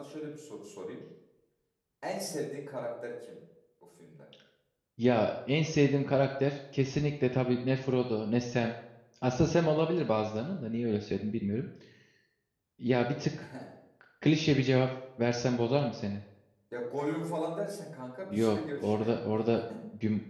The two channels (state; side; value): identical; both; correlation 1.00